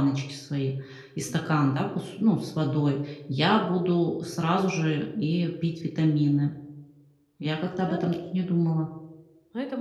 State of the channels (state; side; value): identical; both; correlation 1.00